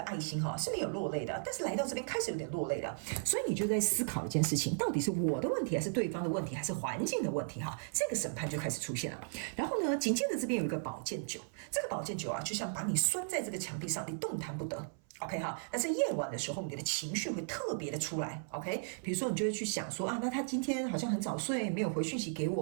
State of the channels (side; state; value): left; silent; 54 dB below the other